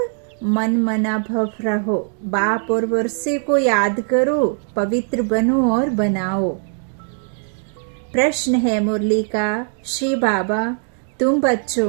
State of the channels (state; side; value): silent; left; 55 dB below the other